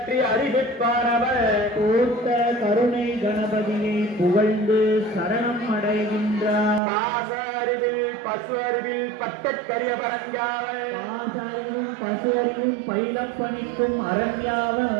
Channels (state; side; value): drops out; left; at 6.8 s